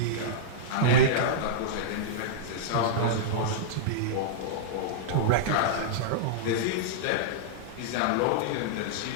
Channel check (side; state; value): both; different; correlation -0.03